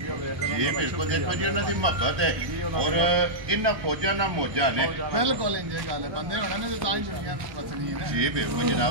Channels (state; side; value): late; left; 1.1 ms